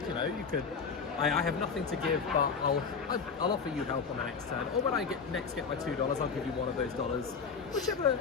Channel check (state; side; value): quieter; right; 5.6 dB